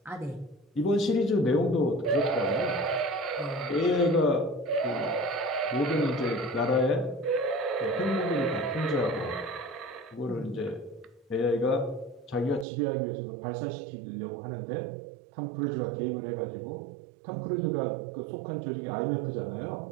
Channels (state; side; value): drops out; left; at 12.7 s